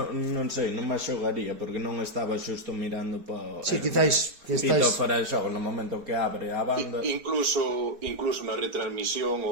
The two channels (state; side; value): late; left; 4.7 ms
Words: sei, non me xogaría porque non estaba xusto mirando para... Sí, quizáis que estáis... fora de xogo no momento que abre a banda. Incluso na retransmisión